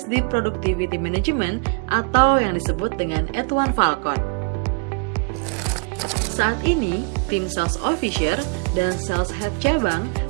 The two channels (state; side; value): quieter; left; 35.2 dB